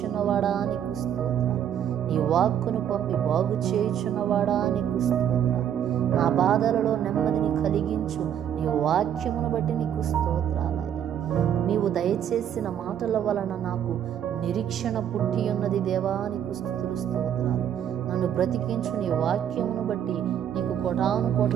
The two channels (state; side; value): quieter; left; 9.6 dB